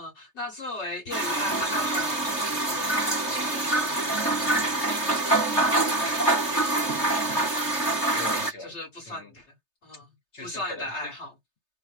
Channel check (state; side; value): late; right; 3.3 ms